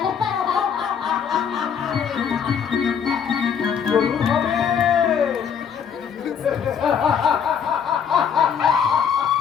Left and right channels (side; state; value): right; quieter; 7.4 dB